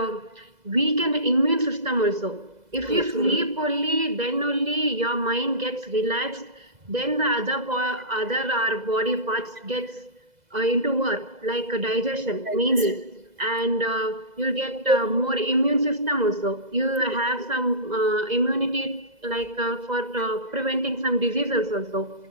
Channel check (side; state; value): left; late; 2.0 ms